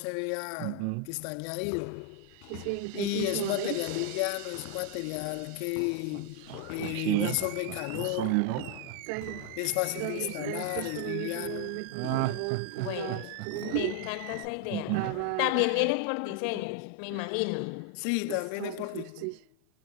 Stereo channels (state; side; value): different; both; correlation 0.00